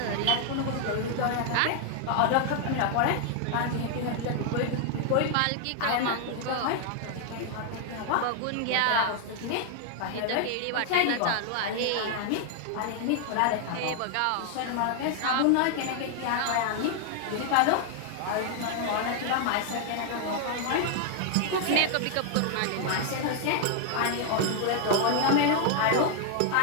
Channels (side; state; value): both; different; correlation 0.00